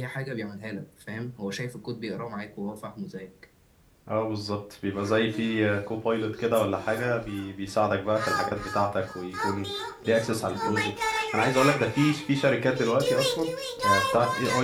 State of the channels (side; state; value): both; identical; correlation 1.00